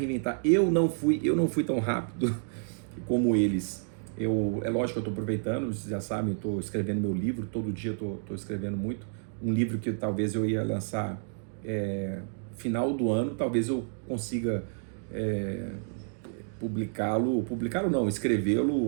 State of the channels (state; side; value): silent; left; digital silence